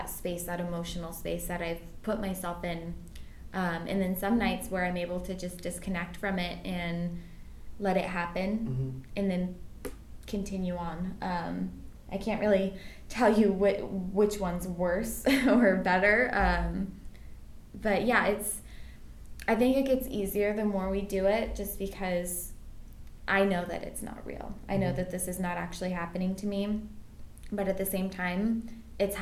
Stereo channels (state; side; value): identical; both; correlation 1.00